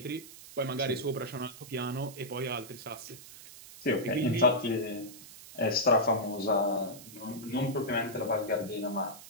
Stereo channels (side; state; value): right; noise; hiss, 17 dB below the sound